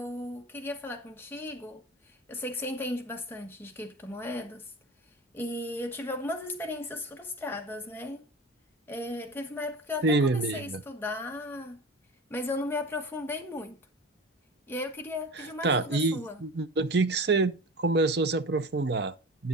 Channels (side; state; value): both; normal; correlation 0.34